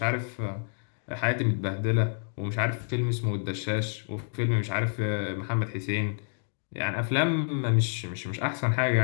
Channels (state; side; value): silent; right; digital silence